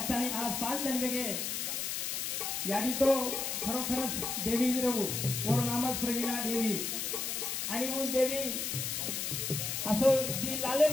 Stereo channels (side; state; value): left; noise; hiss, 2 dB below the sound